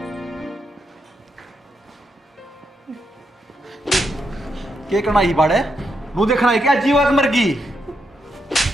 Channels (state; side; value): normal; both; correlation 0.81